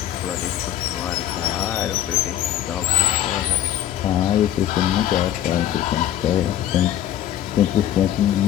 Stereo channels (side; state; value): right; quieter; 11.8 dB